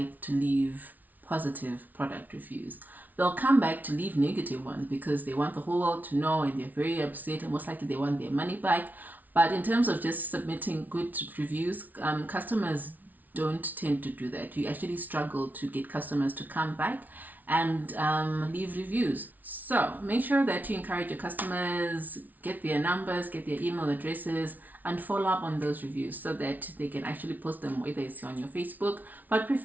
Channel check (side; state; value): left; late; 0.079 ms